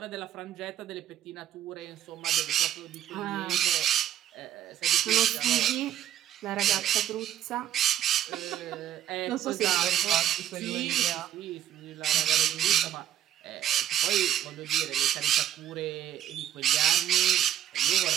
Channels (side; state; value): left; quieter; 11.4 dB